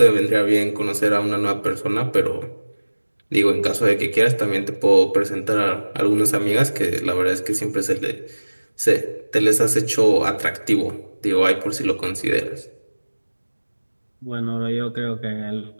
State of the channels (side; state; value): both; inverted; correlation -1.00